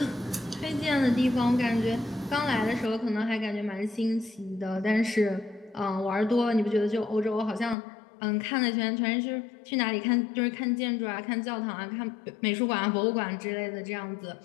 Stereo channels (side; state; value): right; drops out; at 7.8 s